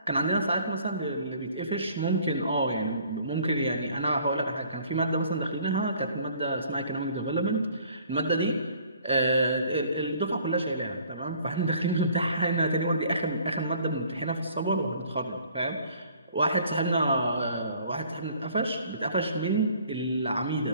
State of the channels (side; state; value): both; inverted; correlation -0.56